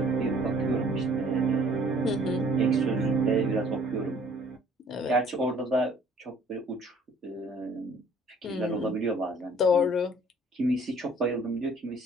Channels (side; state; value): both; normal; correlation 0.56